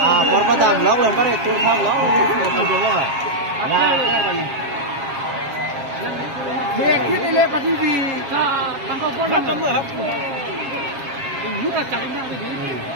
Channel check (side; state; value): left; late; 7.4 ms